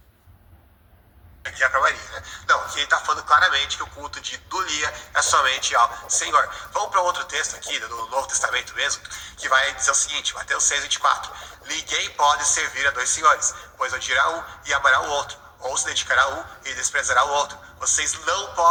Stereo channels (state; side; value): identical; both; correlation 1.00